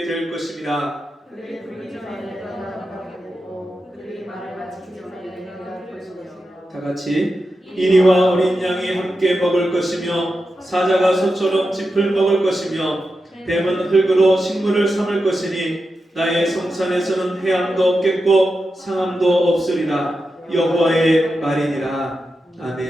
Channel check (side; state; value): both; normal; correlation 0.89